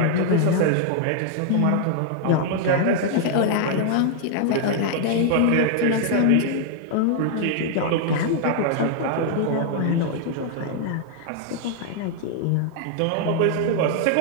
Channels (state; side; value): different; both; correlation 0.00